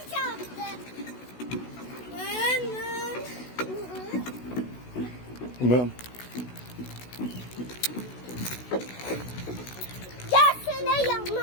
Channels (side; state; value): right; late; 16 ms